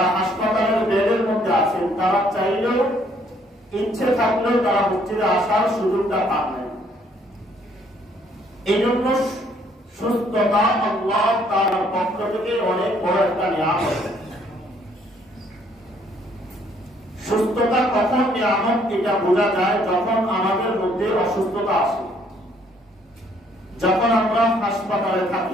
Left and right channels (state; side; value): normal; both; correlation 0.65